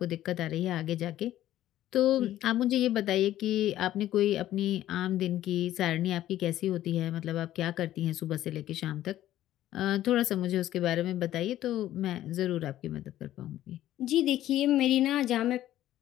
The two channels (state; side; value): quieter; right; 13.3 dB